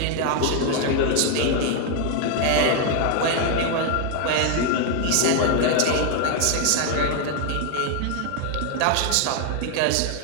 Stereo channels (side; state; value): both; different; correlation 0.00